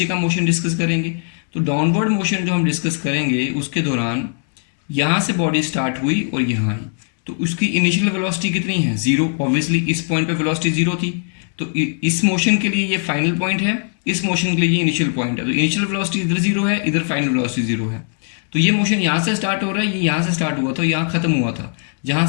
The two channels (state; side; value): silent; right; 62 dB below the other